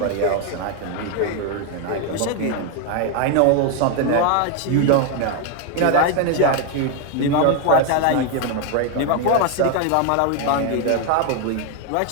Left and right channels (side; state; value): both; different; correlation 0.01